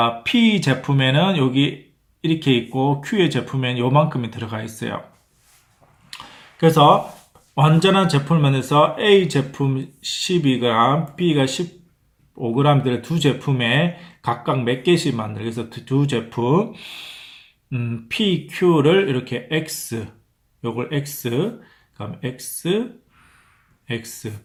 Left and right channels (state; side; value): identical; both; correlation 1.00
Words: P 제품에는 여기 이렇게 있고 Q의 제품에는 요만큼이 들어가 있어요. 그래서 완전한 제품을 만들어서 A 제품 12g, B가 15g들의 두 제품에 각각 몇 개씩 만들어요. 그래서 두 제품 P, Q를 이렇게 X, 요걸 X, 그다음 X, X,